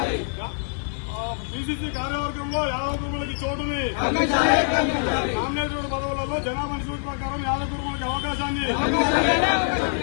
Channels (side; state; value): right; silent; digital silence